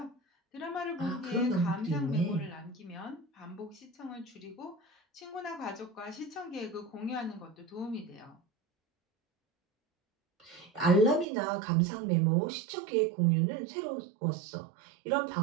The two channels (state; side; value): drops out; left; at 11.2 s